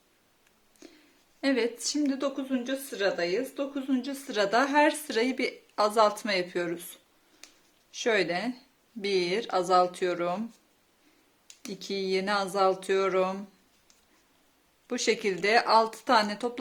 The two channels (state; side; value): identical; both; correlation 1.00